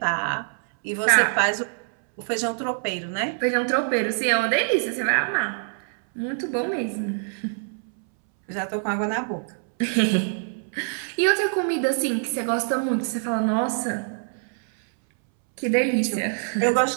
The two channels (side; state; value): left; silent; 62 dB below the other